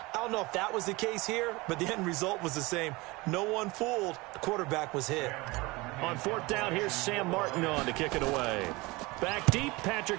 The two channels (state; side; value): quieter; left; 23.1 dB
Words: I don't know if that was the case here, but the end result was the same. No one fooled. The quarterback was hit. On fourth down, here's Sam Martin on to kick it away. Back deep,